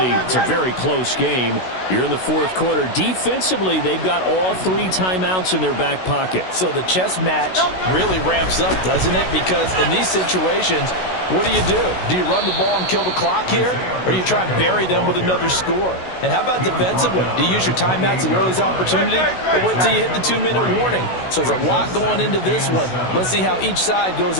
it's a very close game. You're in the fourth quarter. Defensively, they've got all 3 timeouts in their back pocket. So the chess match really ramps up, doesn't it? Because in these situations, what do? Do you run the ball and kill the clock here? Or do you try and bury them with another score? And how about defensively? Do you use your timeouts at the earliest opportunity? Or wait till you hit the 2-minute warning? So there's a lot going into this one. Let's see how each side goes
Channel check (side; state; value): right; late; 16 ms